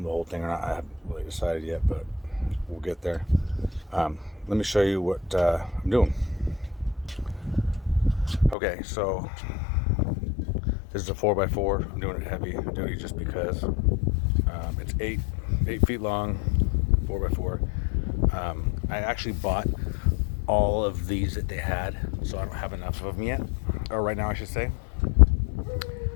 the whole thing or not, I haven't really decided yet, but we'll get there. Let me show you what I'm doing. Okay, so this is a 4x4. I'm doing it heavy duty just because it's 8 feet long, 4x4. I actually bought all of these that they had, so I don't have enough of them yet, or right now I should say.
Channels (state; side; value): drops out; right; at 8.6 s